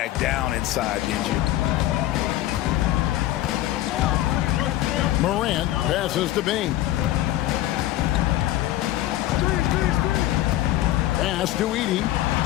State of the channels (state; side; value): quieter; right; 14.8 dB